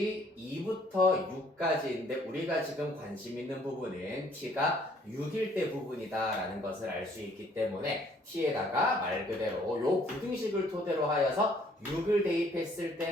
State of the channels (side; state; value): both; normal; correlation 0.62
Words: 2부터 6까지인데 우리가 지금 관심 있는 부분은 t가 6일 때 부분이다 라는 것을 알 수 있기 때문에 t에다가 말 그대로 요 부등식을 토대로 하여서 6을 대입했을